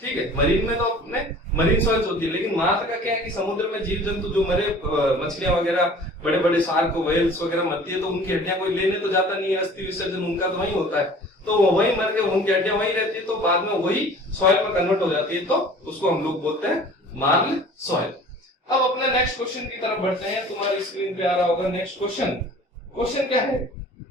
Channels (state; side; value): normal; both; correlation 0.46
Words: ठीक है, मरीन में तो अपने मरीन सॉइल्स होती है, लेकिन मार्ल का क्या है कि समुद्र में जीव जंतु जो मरे, मछलियां वगैरह, बड़े बड़े शार्क वेल्स वगैरह मरती है, तो उनकी हड्डियां कोई लेने तो जाता नहीं है, अस्थि विसर्जन उनका तो वही होता है, तो वो वही मर के उनकी हड्डियां वही रहती है, तो बाद में वही सॉइल में कन्वर्ट हो जाती है, तो उसको हम लोग बोलते हैं मार्ल सॉइल। अब अपने नेक्स्ट क्वेश्चन की तरफ बढ़ते हैं, तुम्हारी स्क्रीन पे आ रहा होगा नेक्स्ट क्वेश्चन। क्वेश्चन क्या है,